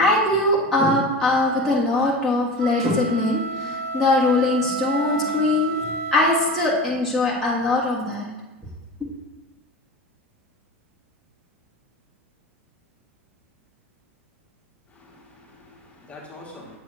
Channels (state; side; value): normal; both; correlation 0.32